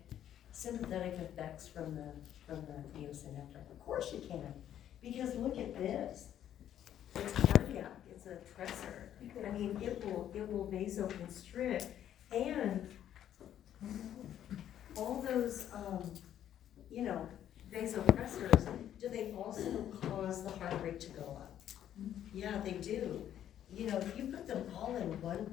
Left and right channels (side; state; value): right; quieter; 10.8 dB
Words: sympathetic effects from the neosynephrine? Of course you can, because look at this. It's cardiac, it's a tressor. I mean, it will vasoconstrict, and all those, vasopressors, do they also cause the heart rate to go up? Yeah, they do. You know, if you put them all in one